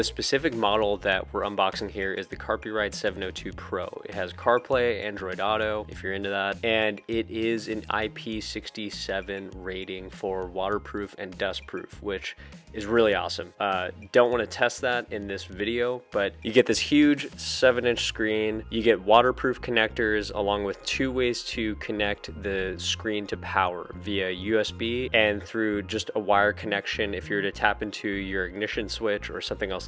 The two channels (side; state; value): both; identical; correlation 1.00